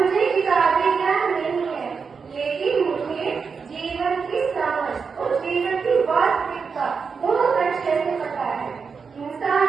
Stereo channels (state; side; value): quieter; left; 5.5 dB